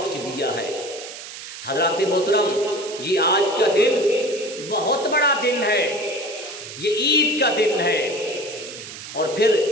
دیا ہے۔ حضرات محترم، یہ آج کا دن بہت بڑا دن ہے، یہ عید کا دن ہے۔ اور پھر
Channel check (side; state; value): right; noise; hiss, 12 dB below the sound